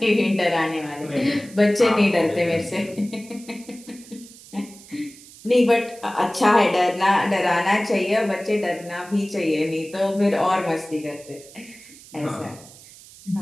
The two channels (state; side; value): noise; right; hiss, 20 dB below the sound